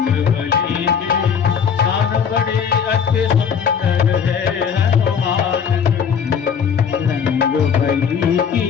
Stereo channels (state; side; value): quieter; right; 7.0 dB